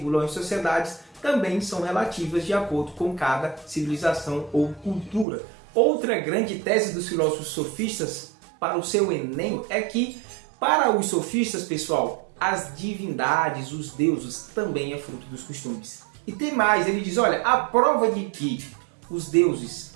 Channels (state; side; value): drops out; left; at 5.2 s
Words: as sociedades também são relativas de acordo com cada civilização ou cultura. Outra grande tese dos filósofos sofistas para o seu Enem é que, para os sofistas, pessoal, as divindades, os deuses, também é fruto dos costumes. E tem mais, ele diz, olha, a prova de que os deuses